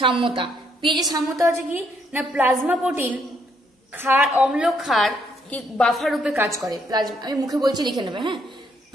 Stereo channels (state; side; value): normal; both; correlation 0.71